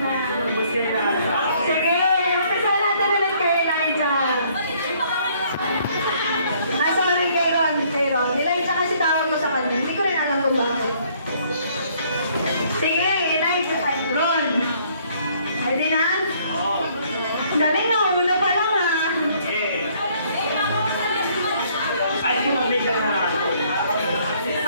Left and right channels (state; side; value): inverted; both; correlation -0.63